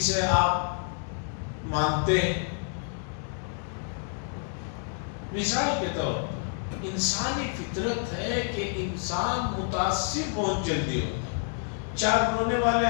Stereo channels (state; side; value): silent; right; 59 dB below the other